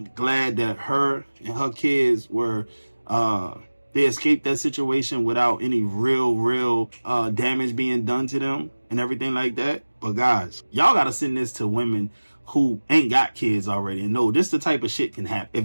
glad that her and her kids were they escaped that situation without any real damage being done to them and everything like that. But guys, y'all gotta send this to women who ain't got kids already and know this the type of shit can happen.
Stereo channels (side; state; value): both; inverted; correlation -1.00